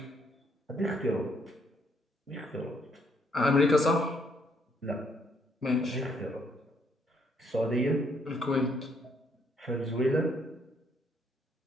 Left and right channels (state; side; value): normal; both; correlation 0.70